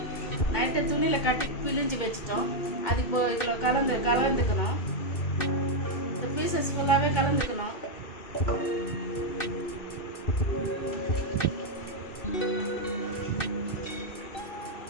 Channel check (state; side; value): late; right; 2.6 ms